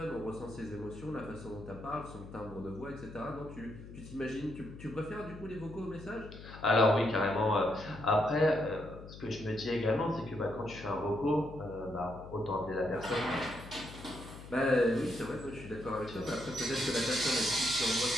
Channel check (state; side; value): noise; left; hum, 14 dB below the sound